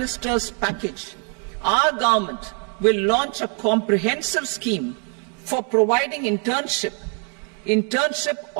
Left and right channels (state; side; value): quieter; left; 39.1 dB